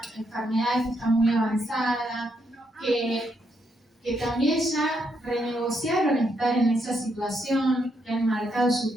enfermedad que está muy avanzada, que también ya renegociaron estar en esa situación, que han marcado su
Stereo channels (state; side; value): normal; both; correlation 0.77